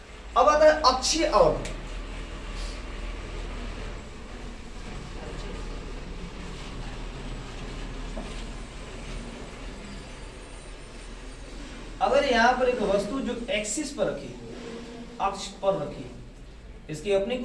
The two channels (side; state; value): both; identical; correlation 1.00